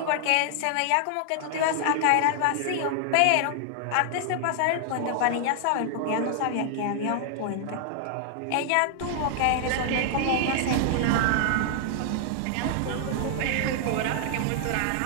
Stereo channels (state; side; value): different; both; correlation -0.01